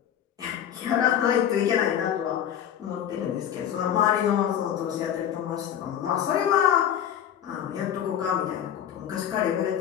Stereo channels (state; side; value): quieter; right; 9.9 dB